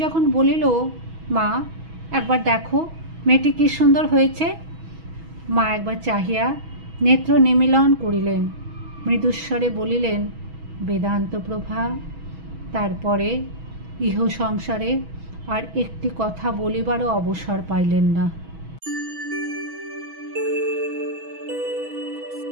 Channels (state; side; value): late; left; 6.2 ms